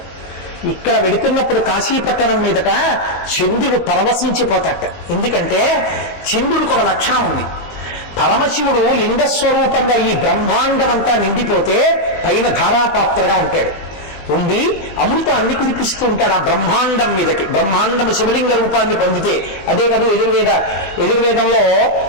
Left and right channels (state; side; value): late; right; 20 ms